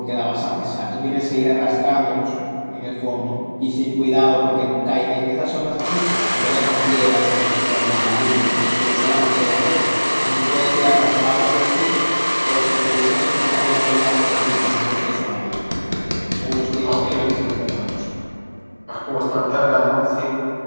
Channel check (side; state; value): both; inverted; correlation -1.00